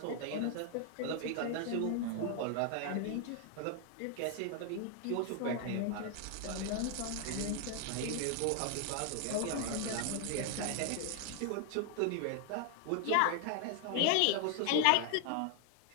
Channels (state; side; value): different; both; correlation 0.00